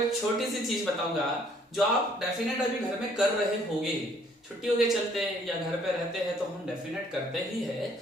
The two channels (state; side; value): normal; both; correlation 0.62